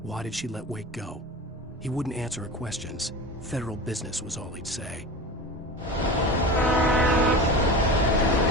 why did she let Wake go? He wouldn't answer her questions. Federal business was all he'd say.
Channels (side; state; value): both; normal; correlation 0.30